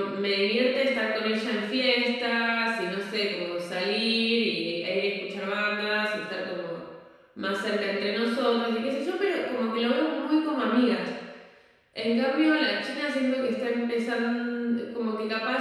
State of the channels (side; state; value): both; identical; correlation 1.00